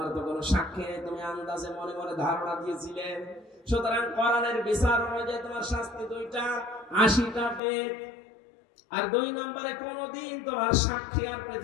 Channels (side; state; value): right; drops out; at 7.6 s